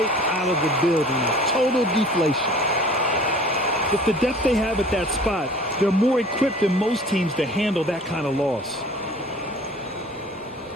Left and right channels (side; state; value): both; normal; correlation 0.47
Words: out of the building. Total deflation. With the depth they have at that spot, they're more equipped than most teams to handle that kind of loss.